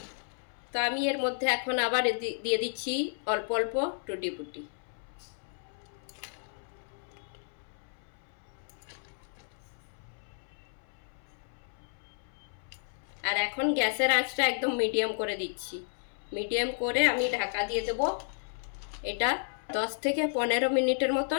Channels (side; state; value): right; silent; 56 dB below the other